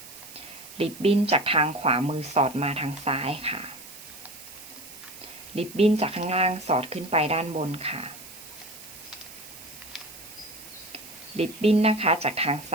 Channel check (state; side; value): noise; right; hiss, 16 dB below the sound